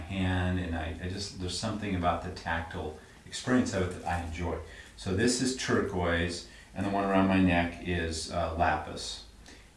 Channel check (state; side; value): identical; both; correlation 1.00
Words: and there's something about the tactile experience of it that I enjoy. So this is turquoise, and the one around my neck is lapis.